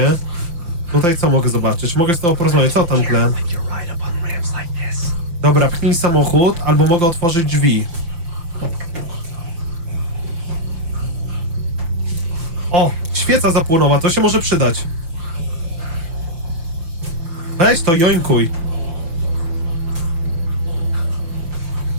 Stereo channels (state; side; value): late; left; 5.8 ms